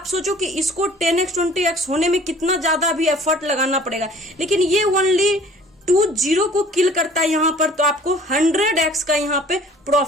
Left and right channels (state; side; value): normal; both; correlation 0.51